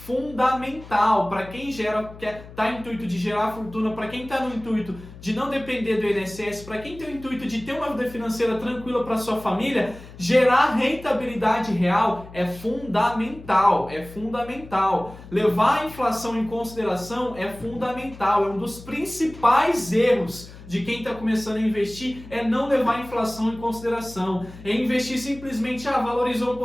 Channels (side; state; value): left; noise; hum, 17 dB below the sound